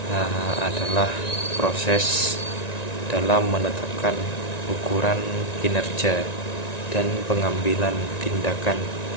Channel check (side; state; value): right; late; 1.9 ms